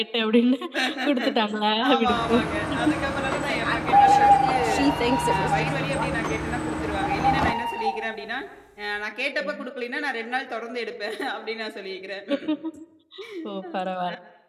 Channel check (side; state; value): both; identical; correlation 1.00